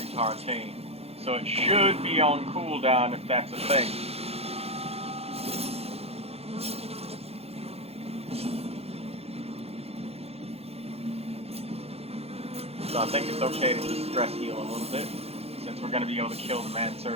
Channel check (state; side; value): late; left; 0.29 ms